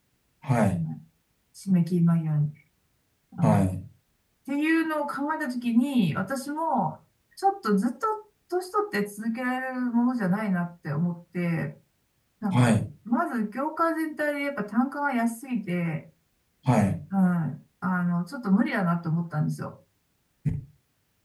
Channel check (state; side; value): identical; both; correlation 1.00